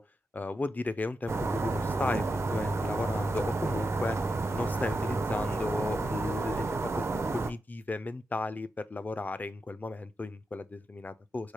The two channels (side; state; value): both; normal; correlation 0.86